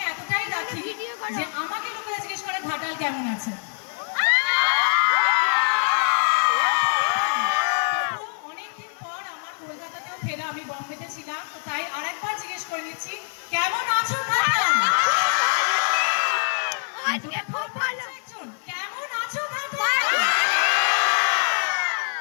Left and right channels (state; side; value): silent; right; 62 dB below the other